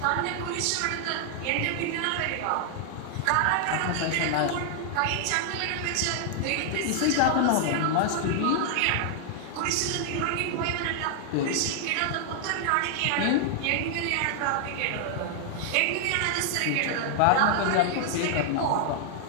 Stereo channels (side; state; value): both; different; correlation 0.00